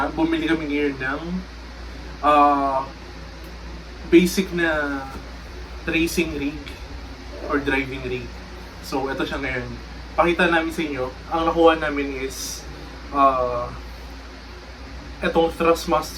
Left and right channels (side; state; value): both; identical; correlation 1.00